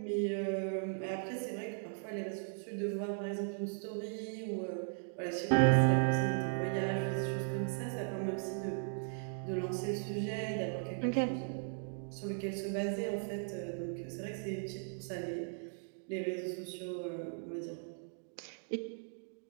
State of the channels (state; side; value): silent; left; digital silence